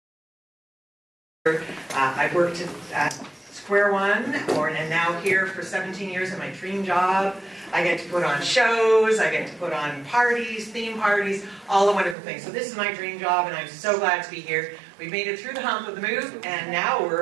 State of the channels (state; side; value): drops out; left; at 12.2 s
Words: I've worked at Square One, and now here for 17 years in my dream job. I get to put on shows, I get to put on parties, theme parties, all the wonderful things. So this is my dream job, and I'm so glad to be here. We've made it through the hump of the move, and now